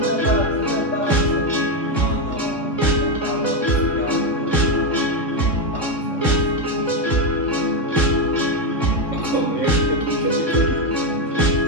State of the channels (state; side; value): late; right; 3.6 ms